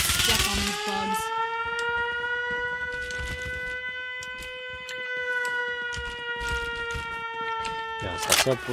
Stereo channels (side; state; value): both; identical; correlation 1.00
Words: step on these bugs. いや、さすが